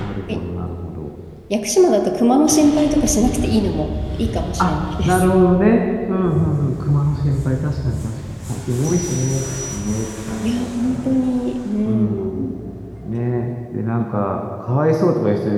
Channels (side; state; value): both; identical; correlation 1.00